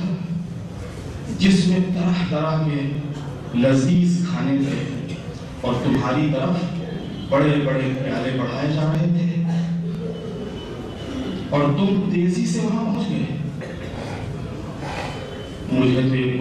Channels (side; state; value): both; identical; correlation 1.00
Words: جس میں طرح طرح کے لذیذ کھانے تھے اور تمہاری طرف بڑے بڑے پیالے بڑھائے جا رہے تھے اور تم تیزی سے وہاں پہنچ گئے مجھے تو یہ